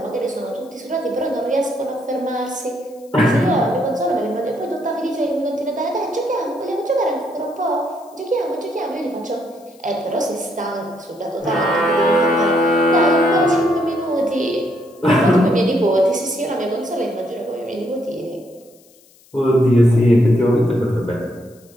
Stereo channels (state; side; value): noise; left; hiss, 29 dB below the sound